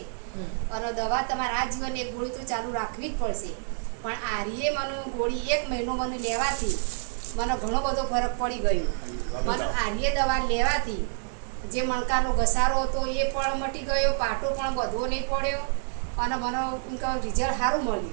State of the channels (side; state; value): left; silent; 55 dB below the other